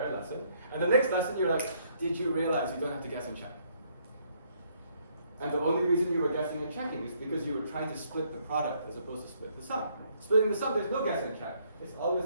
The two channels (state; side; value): inverted; both; correlation -0.68